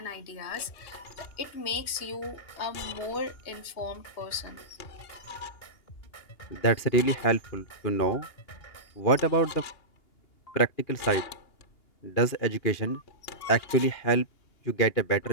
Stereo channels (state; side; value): late; right; 2.8 ms